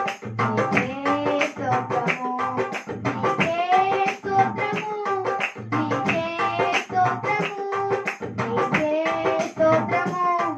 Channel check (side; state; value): both; identical; correlation 1.00